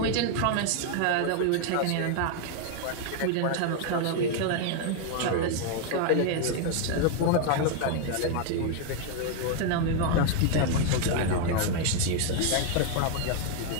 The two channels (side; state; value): both; different; correlation 0.00